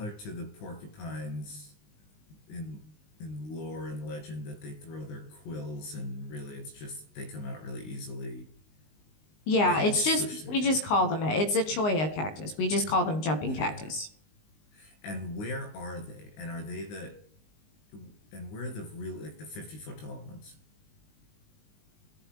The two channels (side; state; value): right; late; 19 ms